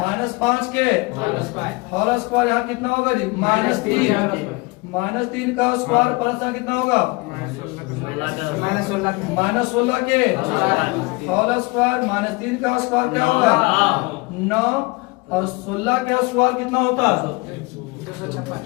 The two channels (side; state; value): right; quieter; 25.5 dB